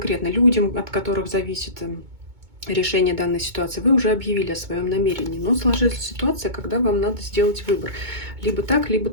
людям, от которых зависит решение данной ситуации, вы уже объявили о своем намерении. Но сложилась ситуация, когда вам надо сделать выбор. Либо так, либо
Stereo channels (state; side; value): late; left; 2.2 ms